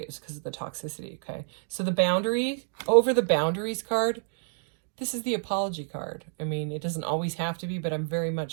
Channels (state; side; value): silent; left; digital silence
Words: is because of the toxicity, okay? So the boundary, over the boundaries card, this is the apology card. I mean, it doesn't always have to be, but I'm very